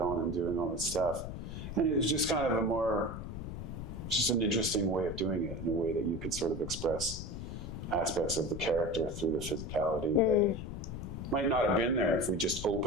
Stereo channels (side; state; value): left; noise; rumble, 8 dB below the sound